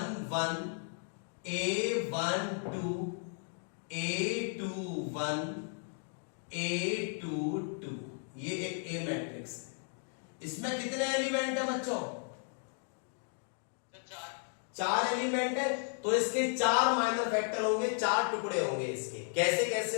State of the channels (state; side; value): silent; right; 55 dB below the other